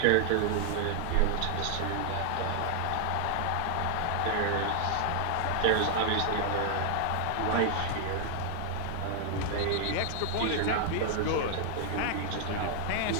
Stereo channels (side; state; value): both; different; correlation 0.00